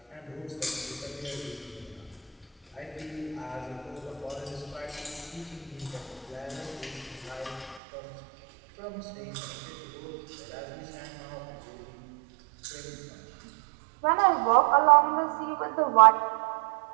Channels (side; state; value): left; drops out; at 7.8 s